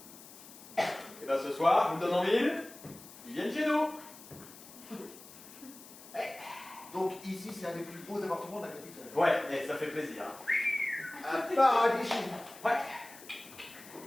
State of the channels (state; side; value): noise; left; hiss, 18 dB below the sound